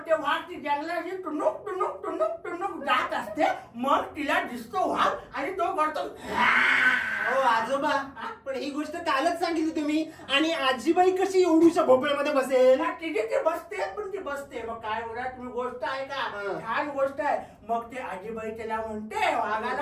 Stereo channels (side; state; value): both; identical; correlation 1.00